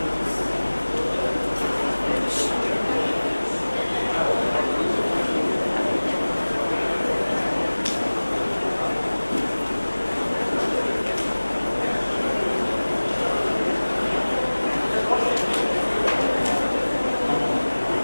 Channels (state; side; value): inverted; both; correlation -1.00